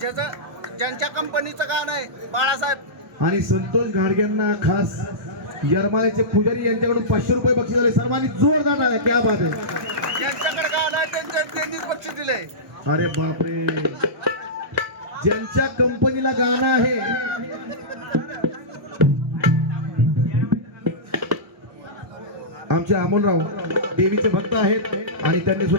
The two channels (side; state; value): left; late; 1.2 ms